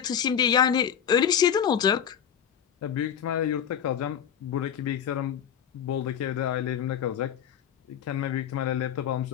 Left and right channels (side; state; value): right; quieter; 8.7 dB